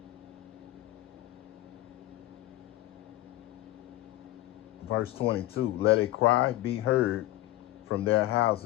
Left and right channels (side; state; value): right; quieter; 16.6 dB